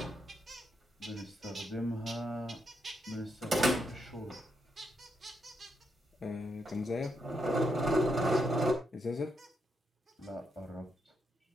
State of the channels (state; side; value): normal; both; correlation 0.80